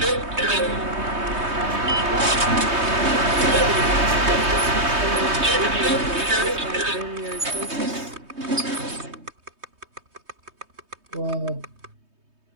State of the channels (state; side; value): late; left; 3.2 ms